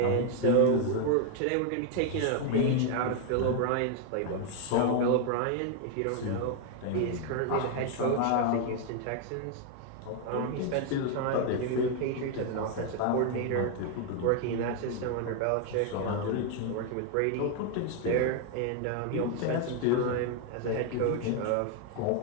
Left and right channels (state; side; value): different; both; correlation 0.00